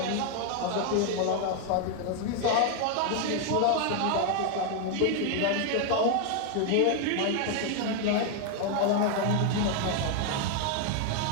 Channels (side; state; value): both; different; correlation 0.01